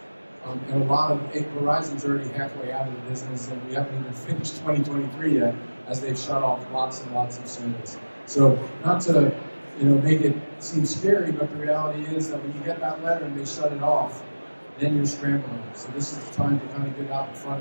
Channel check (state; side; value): inverted; both; correlation -1.00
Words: And a lot of Verizon's already halfway out of the business, and we haven't even finished 2023 yet, as they've shut off lots and lots of service. So not to make it seem scary, but the reality is that when you get that letter and they shut it off, then you're scrambling. So this is the time to kind of get out in